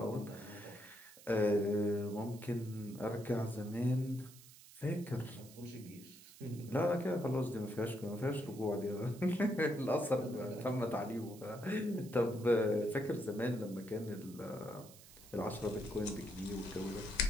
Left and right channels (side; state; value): right; noise; hiss, 20 dB below the sound